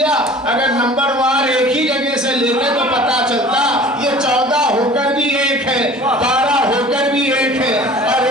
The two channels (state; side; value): normal; both; correlation 0.44